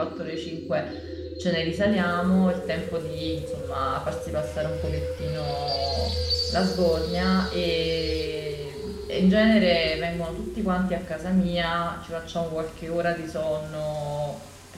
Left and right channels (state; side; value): identical; both; correlation 1.00